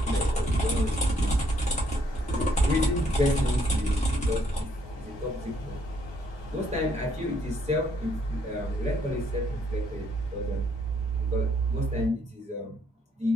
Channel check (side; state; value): both; normal; correlation 0.69